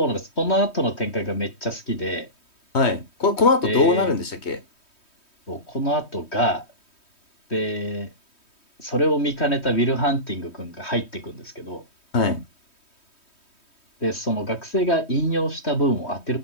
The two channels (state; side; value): late; right; 3.2 ms